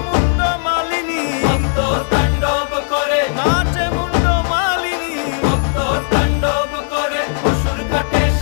মুন্ড মালিনী, মত্ত তাণ্ডব করে, নাচে মুন্ড মালিনী, মত্ত তাণ্ডব করে অসুর কাটে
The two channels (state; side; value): silent; right; digital silence